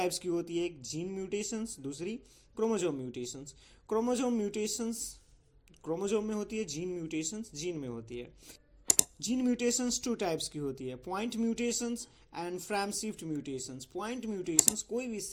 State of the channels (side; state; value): both; identical; correlation 1.00